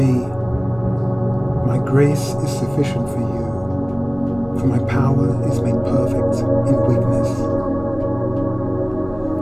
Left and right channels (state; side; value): noise; left; hum, 21 dB below the sound